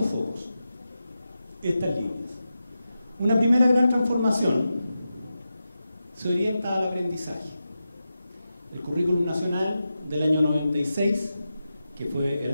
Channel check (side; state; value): both; inverted; correlation -0.91